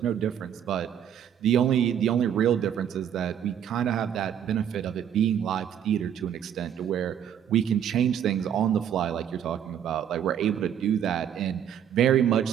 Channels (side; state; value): left; quieter; 9.3 dB